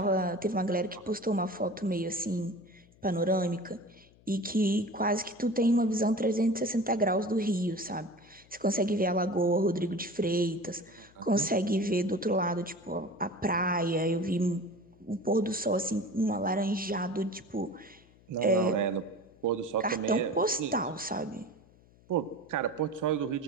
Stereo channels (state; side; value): noise; left; hum, 28 dB below the sound